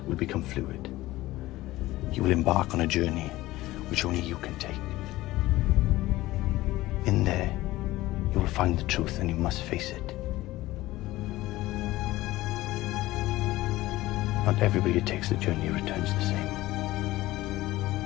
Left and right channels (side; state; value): right; quieter; 17.4 dB